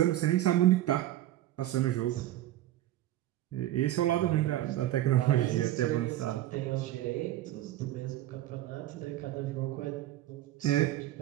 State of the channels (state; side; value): quieter; left; 14.0 dB